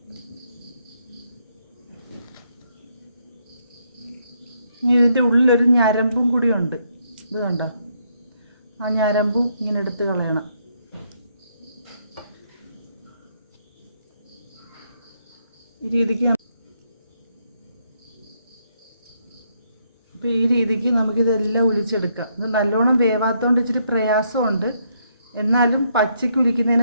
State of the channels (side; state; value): both; inverted; correlation -0.75